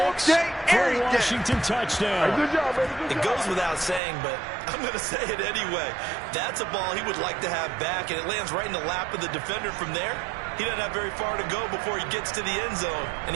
for a Washington touchdown. Good job, baby. It goes without saying, but I'm going to say it anyway. That's a ball he would like to have back, and it lands right in the lap of the defender from there. He doesn't have very far to go before he gets to the end zone, and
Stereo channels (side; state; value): left; drops out; at 4.0 s